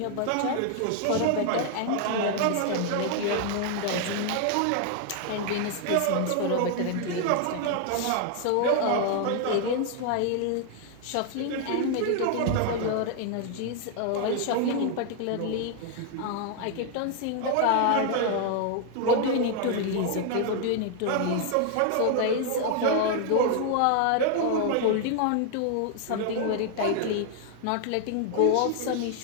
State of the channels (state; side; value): different; both; correlation 0.00